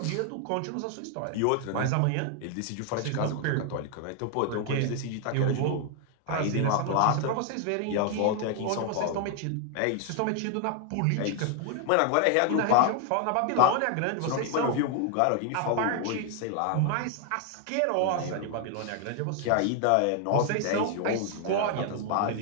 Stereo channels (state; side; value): different; both; correlation 0.00